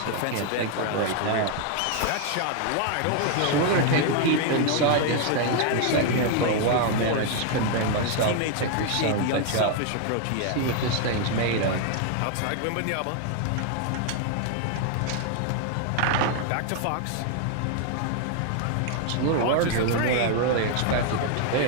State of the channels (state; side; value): different; both; correlation 0.00